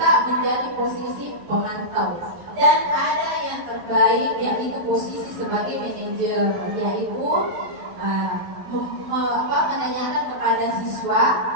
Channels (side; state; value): left; late; 12 ms